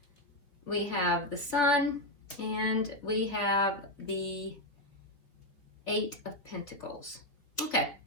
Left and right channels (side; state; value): right; late; 3.3 ms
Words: We have the Sun, and we have the 8 of Pentacles. Okay.